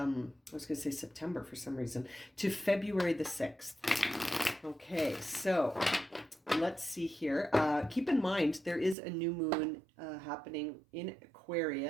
was going to say September for some reason, to February the 6th. Okay, so let's see here. Keep in mind, there is a new moon happening in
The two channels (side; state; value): left; drops out; at 9.0 s